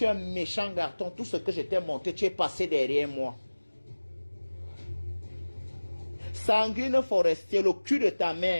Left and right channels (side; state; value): both; inverted; correlation -1.00